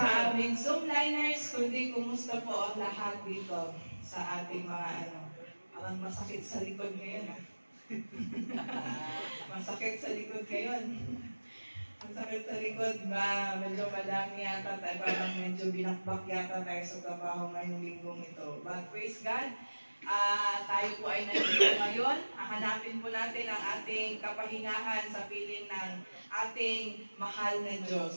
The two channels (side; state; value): both; inverted; correlation -1.00